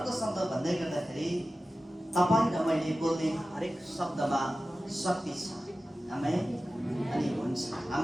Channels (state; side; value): normal; both; correlation 0.95